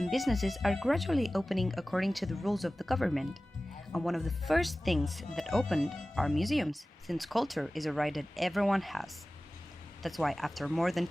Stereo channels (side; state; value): both; normal; correlation 0.97